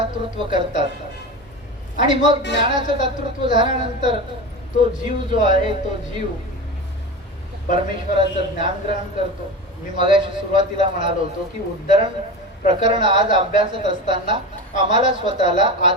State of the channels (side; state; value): both; normal; correlation 0.26